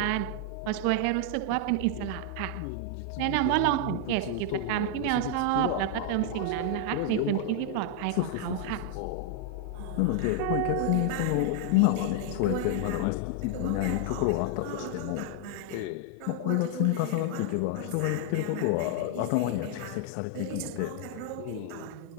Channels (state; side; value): different; both; correlation 0.00